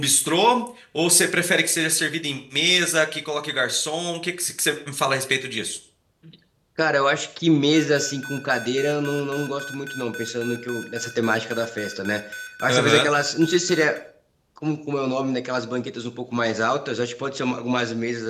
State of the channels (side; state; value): both; identical; correlation 1.00